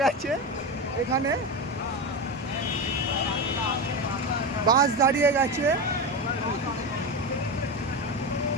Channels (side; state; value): both; normal; correlation 0.19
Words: গেছে, এখানে বাস দাঁড়িয়ে গেছে,